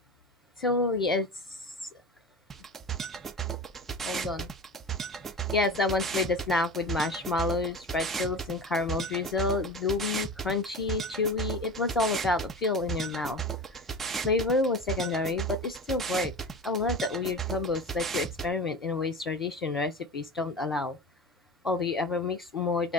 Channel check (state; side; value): normal; both; correlation 0.31